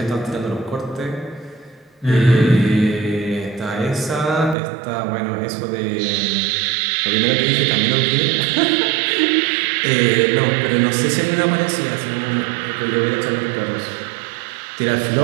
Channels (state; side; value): drops out; left; at 4.5 s